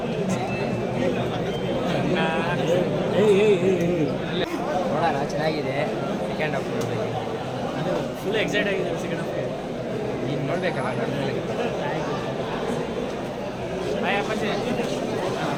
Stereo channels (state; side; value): identical; both; correlation 1.00